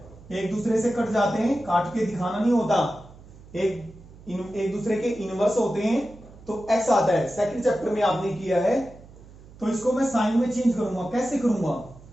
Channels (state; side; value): noise; right; hum, 21 dB below the sound